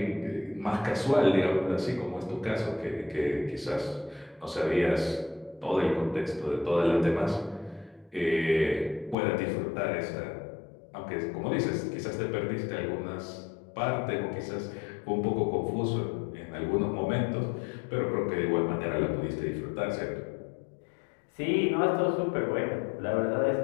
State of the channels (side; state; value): right; drops out; at 9.2 s